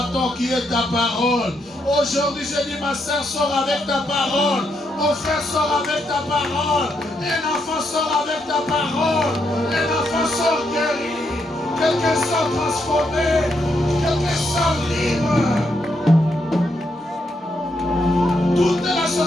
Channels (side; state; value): both; normal; correlation 0.78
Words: qui est ta parole. Aujourd'hui, je dis, ma soeur, sort avec ta parole. Mon frère sort avec ta parole. Un enfant sort avec ta parole. Un enfant sort guéri. Quelqu'un sort transformé. Quelqu'un sort libre. Toute la